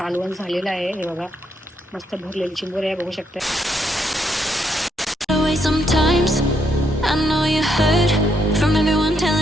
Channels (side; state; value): both; normal; correlation 0.76